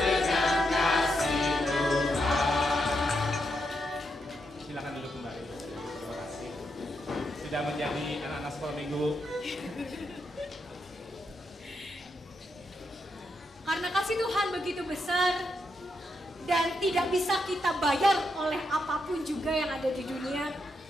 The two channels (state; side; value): normal; both; correlation 0.82